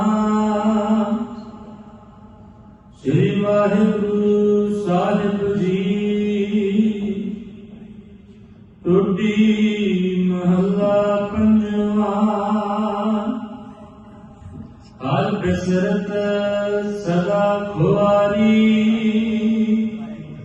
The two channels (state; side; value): identical; both; correlation 1.00